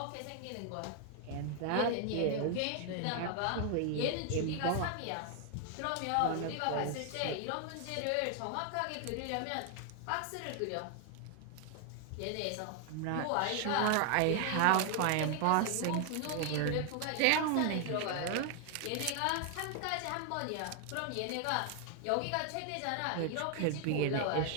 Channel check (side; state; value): both; different; correlation 0.00